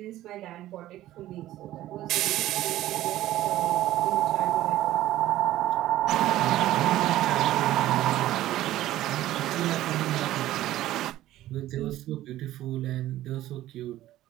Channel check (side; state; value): left; quieter; 14.5 dB